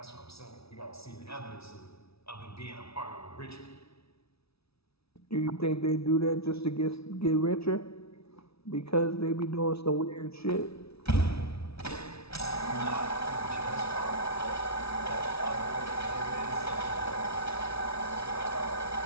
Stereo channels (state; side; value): late; right; 0.77 ms